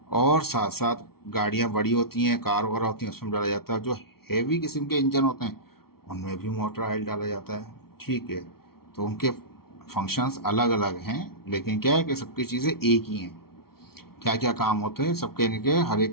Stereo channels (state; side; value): late; right; 0.94 ms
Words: और साथ साथ गाड़ियाँ बड़ी होती हैं, कार वगैरह होती हैं, उसमें डाला जाता है। जो हेवी किस्म के इंजन होते हैं उनमें भी मोटर ऑयल डाला जाता है। ठीक है, तो उनके फंक्शंस अलग अलग हैं, लेकिन क्या है कि सबकी चीज़ें एक ही हैं। क्या क्या काम होते हैं सबके, इनके हर